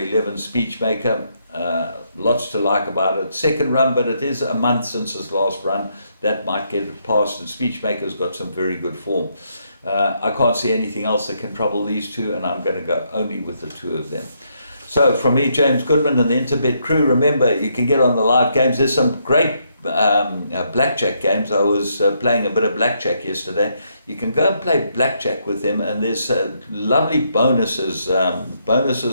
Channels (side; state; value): both; inverted; correlation -0.75